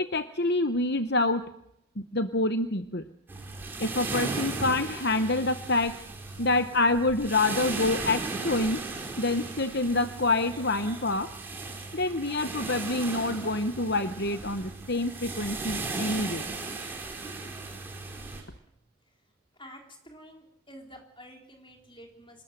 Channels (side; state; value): both; normal; correlation -0.05